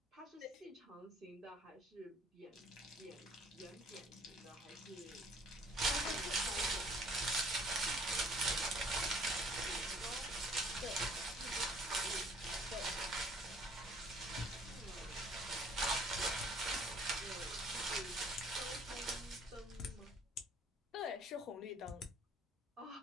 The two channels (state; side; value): normal; both; correlation 0.57